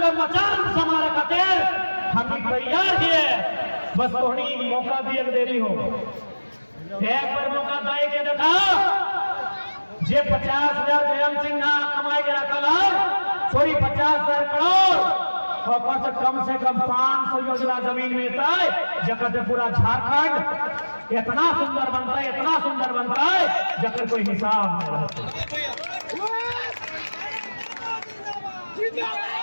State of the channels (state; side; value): inverted; both; correlation -1.00